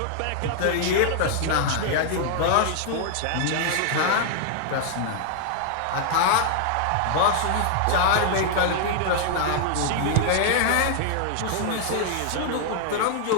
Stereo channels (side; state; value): both; different; correlation -0.01